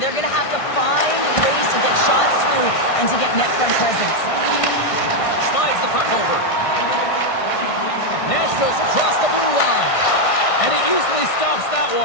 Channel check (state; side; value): late; right; 1.6 ms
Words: going to have to find ways to get shots through and to get net front presence. Slides the puck over. Nashville's across the blue line. And he easily stops that